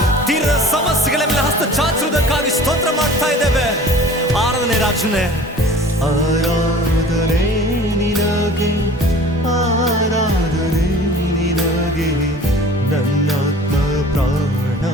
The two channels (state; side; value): normal; both; correlation 0.45